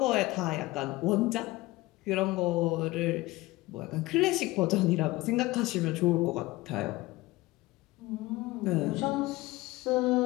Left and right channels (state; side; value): quieter; right; 19.8 dB